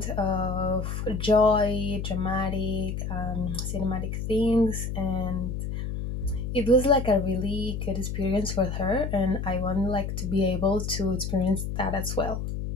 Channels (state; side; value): noise; left; hum, 4 dB below the sound